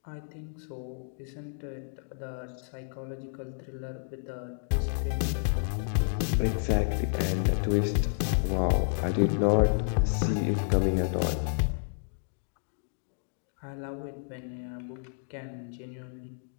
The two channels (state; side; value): silent; right; digital silence